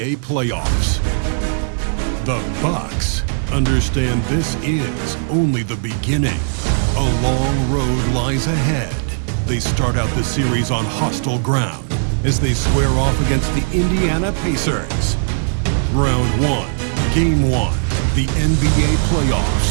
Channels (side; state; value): left; silent; digital silence